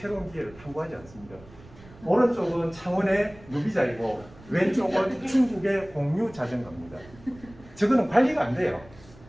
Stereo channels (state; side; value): noise; right; rumble, 22 dB below the sound